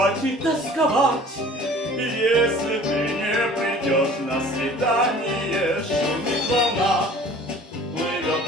и тосковать, если ты не придешь на свидание. Шумит волна, плывет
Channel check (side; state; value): both; normal; correlation 0.48